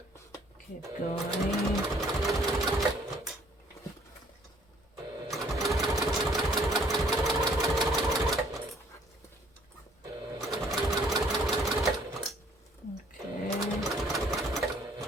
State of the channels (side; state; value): both; normal; correlation 0.61